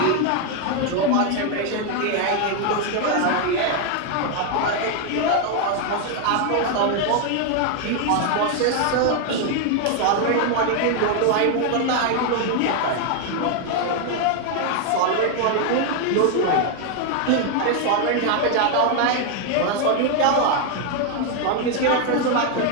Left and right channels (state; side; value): different; both; correlation 0.01